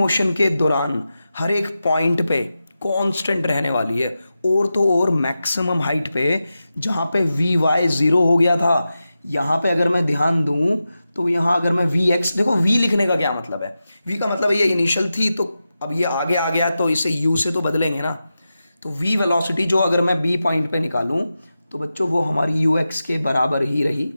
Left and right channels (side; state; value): both; inverted; correlation -0.92